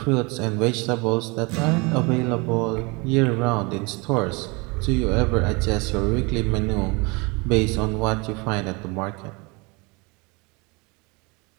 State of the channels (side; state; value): left; quieter; 27.9 dB